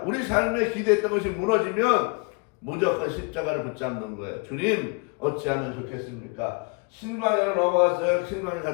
우리 삶에 기대했던 것이 무너지면 무조건 십자가를 붙잡는 거예요. 주님 어찌하면 좋겠습니까? 신광야로 넘어갔어요. 신광야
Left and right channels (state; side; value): quieter; right; 32.3 dB